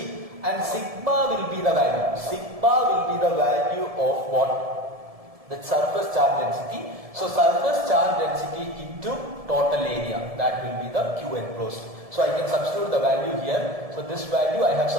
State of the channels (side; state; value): left; late; 1.7 ms